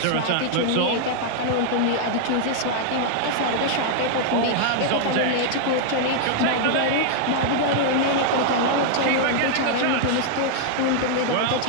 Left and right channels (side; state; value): both; different; correlation -0.01